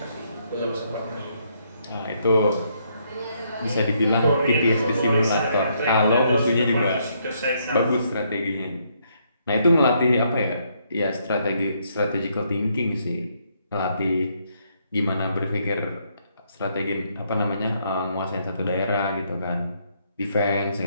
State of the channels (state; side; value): inverted; both; correlation -0.73